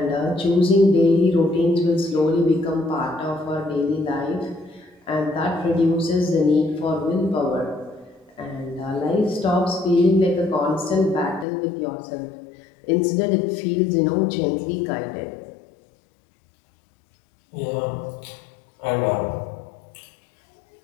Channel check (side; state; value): right; drops out; at 11.5 s